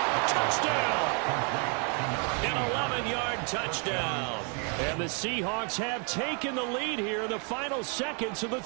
Touchdown! An 11-yard touchdown. And the Seahawks have taken the lead here in the final seconds of the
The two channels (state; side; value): quieter; left; 37.9 dB